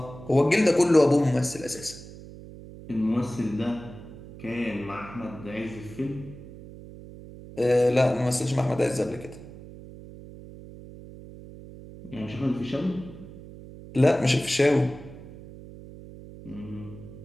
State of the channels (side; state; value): right; noise; hum, 16 dB below the sound